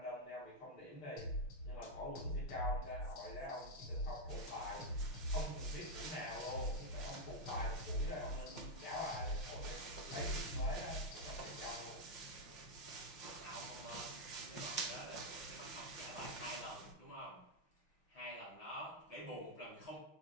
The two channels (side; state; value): right; late; 5.7 ms